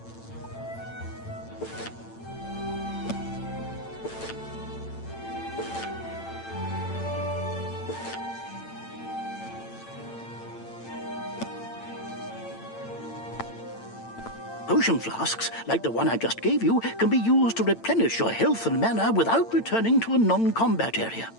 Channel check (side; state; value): right; late; 8.9 ms